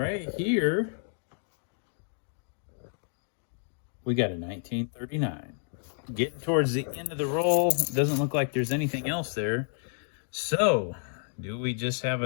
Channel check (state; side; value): silent; right; 58 dB below the other